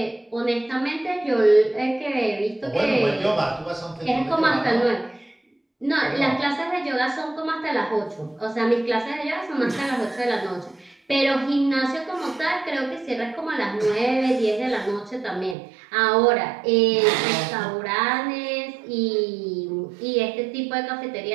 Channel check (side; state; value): left; drops out; at 15.6 s